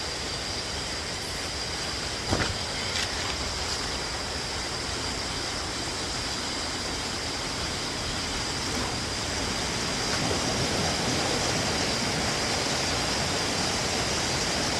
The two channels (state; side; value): identical; both; correlation 1.00